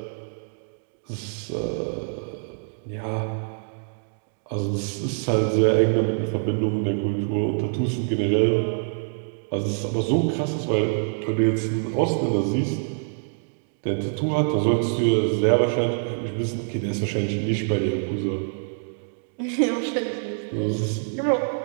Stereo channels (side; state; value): left; silent; digital silence